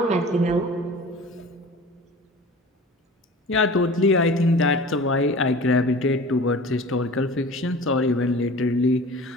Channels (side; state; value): both; normal; correlation 0.40